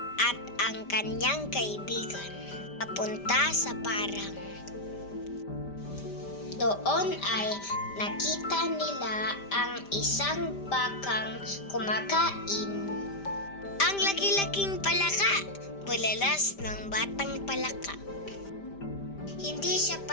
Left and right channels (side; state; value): right; late; 5.1 ms